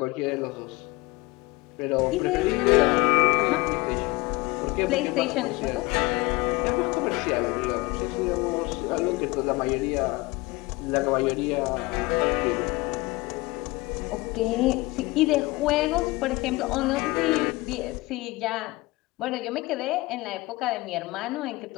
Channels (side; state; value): right; quieter; 22.2 dB